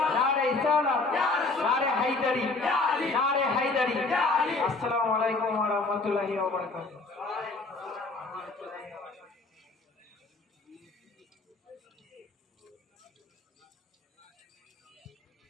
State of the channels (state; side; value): quieter; right; 3.5 dB